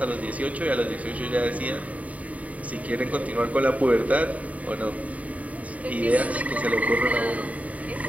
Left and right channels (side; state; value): left; late; 0.069 ms